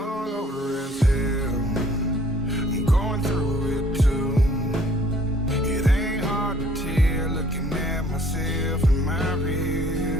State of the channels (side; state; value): both; normal; correlation 0.57